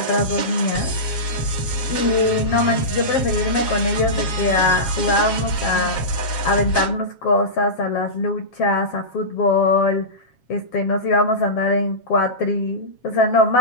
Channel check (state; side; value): late; right; 7.4 ms